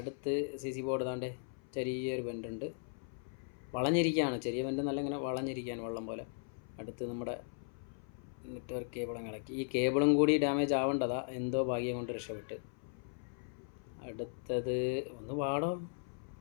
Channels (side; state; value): right; silent; 53 dB below the other